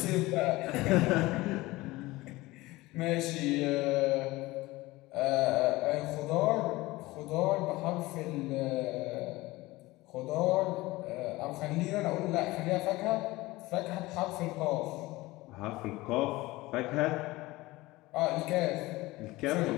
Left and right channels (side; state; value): right; quieter; 19.9 dB